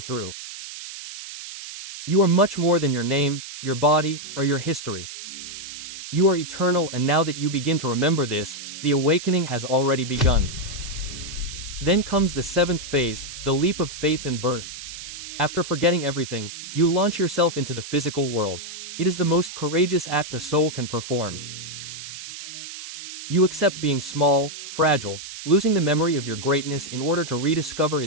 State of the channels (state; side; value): noise; right; hiss, 11 dB below the sound